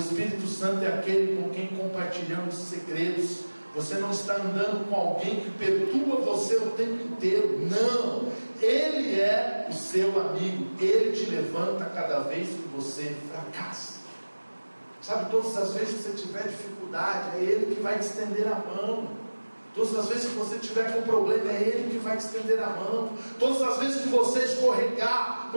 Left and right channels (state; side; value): inverted; both; correlation -1.00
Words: Santo é aquele com quem compartilhamos segredos. Você não está andando com alguém que perturba você o tempo inteiro. Não. Ele é o seu amigo. Ele te levanta cada vez que você fracassa. Sabe, todas as vezes que você tiver dificuldade, é Ele que vai te estender a mão. Todas as vezes que você tiver com problema, é Ele que vai te estender a mão. Todas as vezes que você escorregar,